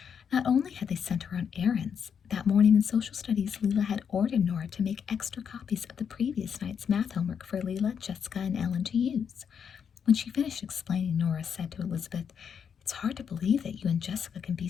Not only had they sent her on errands, that morning in social studies, Leela had ordered Nora to make extra copies of the previous night's math homework for Leela, Jessica, and Ellen to use. When she finished explaining, Nora said to Elizabeth, "It's hard to believe that you and Jessica can be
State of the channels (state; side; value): quieter; right; 7.3 dB